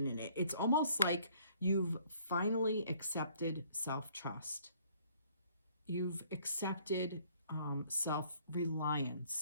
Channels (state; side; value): inverted; both; correlation -0.61